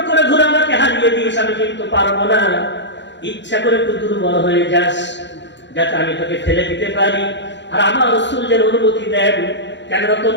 করে ধরে আমাকে হারিয়ে দিস, আমি কিন্তু পারবো না, ইচ্ছা করে একটু দুর্বল হয়ে যাস, যাতে আমি তোকে ফেলে দিতে পারি, আর আমার রাসূল যেন অনুমতি দেন। কেন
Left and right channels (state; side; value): late; right; 0.52 ms